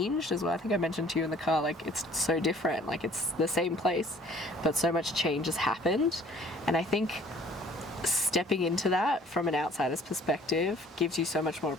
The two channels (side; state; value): both; normal; correlation 0.54